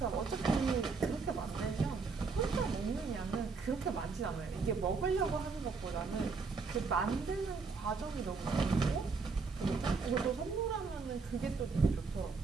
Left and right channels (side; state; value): left; quieter; 4.7 dB